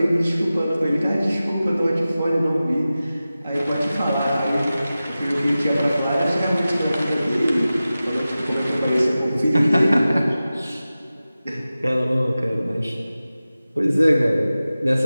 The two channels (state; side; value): inverted; both; correlation -0.95